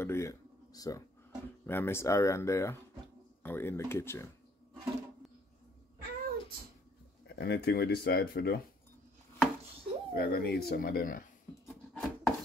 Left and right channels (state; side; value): normal; both; correlation 0.62